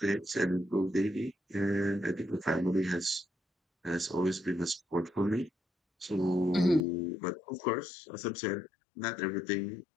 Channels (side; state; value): right; drops out; at 6.8 s